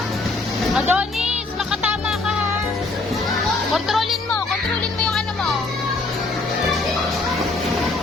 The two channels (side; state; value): right; quieter; 3.4 dB